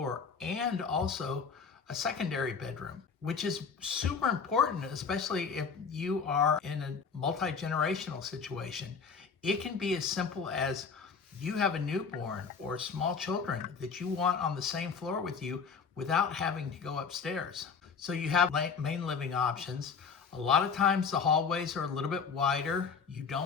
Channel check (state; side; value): quieter; right; 5.7 dB